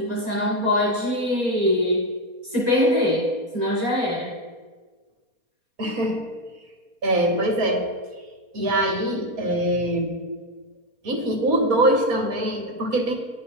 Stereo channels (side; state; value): left; late; 4.3 ms